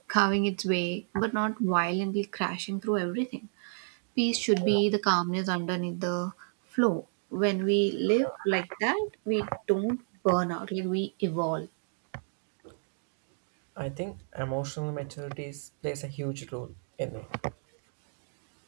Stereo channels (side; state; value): left; silent; digital silence